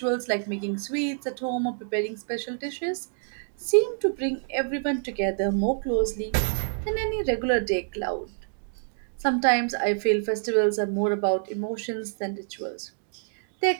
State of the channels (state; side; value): silent; left; digital silence